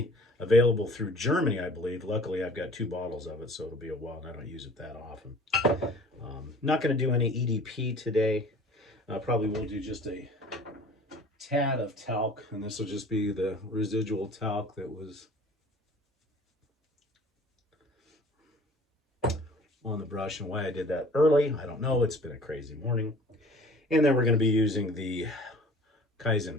available through Germany, I believe. Luckily, I've got 2 bottles of it, so it'll be a while, and I don't use it that often. Not going to do any EDP today. Probably will do just a tad of talc, and this will just be the residual talc that was on the brush, and why I did that early, I don't know. It's been a crazy morning. And then we're going to be using the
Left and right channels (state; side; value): normal; both; correlation 0.48